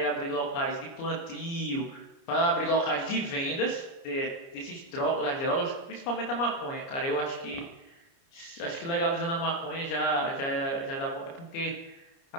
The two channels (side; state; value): right; late; 29 ms